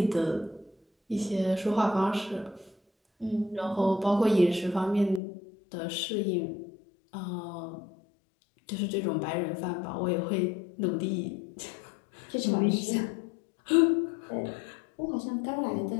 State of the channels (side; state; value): right; drops out; at 5.2 s